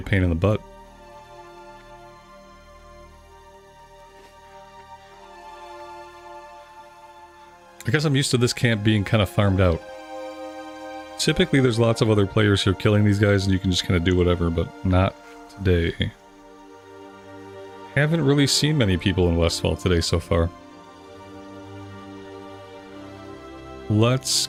pain in the butt. I guess I'm used to this camp being kind of farmed out. Typically there's lots of other players who are killing these guys and you can just kind of do whatever, but not today. Haven't really seen many people in Westfall today so far. Let's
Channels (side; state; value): both; identical; correlation 1.00